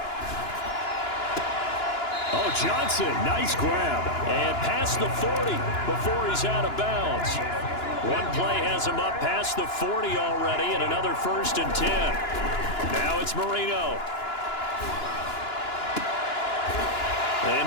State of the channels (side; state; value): right; late; 2.9 ms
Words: Oh, Johnson, nice grab. And past the 40 before he's out of bounds. One play has him up past the 40 already, and another 1st and 10. Now it's Marino.